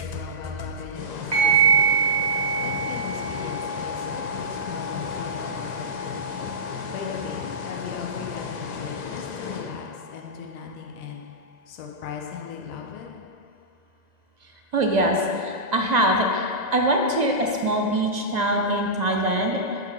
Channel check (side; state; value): left; late; 1.9 ms